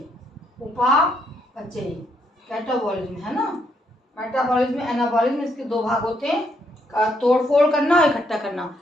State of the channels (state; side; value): normal; both; correlation 0.74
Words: कैटाबॉलिज्म है ना, मेटाबॉलिज्म, एनाबॉलिज्म, इसके दो भाग होते हैं, तोड़फोड़ करना और इकट्ठा करना।